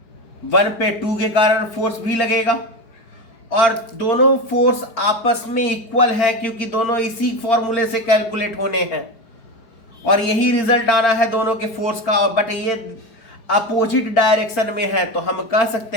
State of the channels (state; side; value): late; right; 4.8 ms